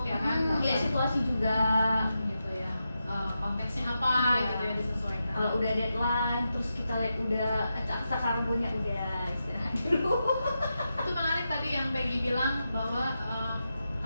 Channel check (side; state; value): both; inverted; correlation -0.88